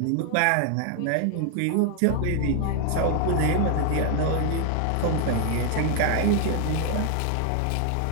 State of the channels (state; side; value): different; both; correlation 0.00